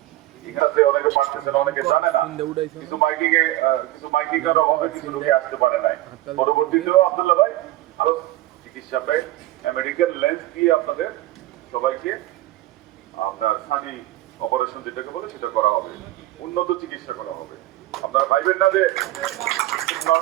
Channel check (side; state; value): left; quieter; 16.0 dB